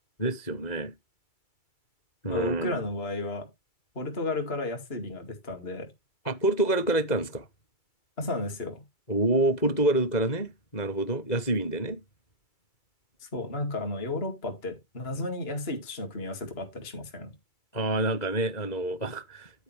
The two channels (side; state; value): right; late; 2.3 ms